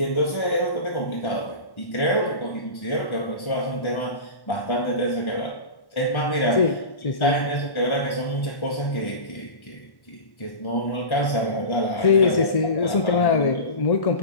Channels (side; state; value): right; late; 1.1 ms